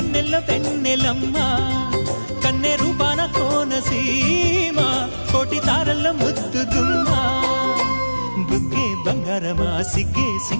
వెన్నెలమ్మా కన్నె రూపాన కోనసీమ కోటి తారల్లో ముద్దుగుమ్మా బుగ్గే బంగారమా సిగ్గే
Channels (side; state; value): both; inverted; correlation -1.00